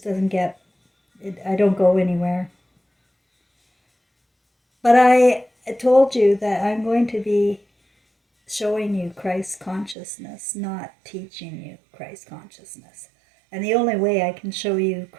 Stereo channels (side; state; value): left; drops out; at 10.0 s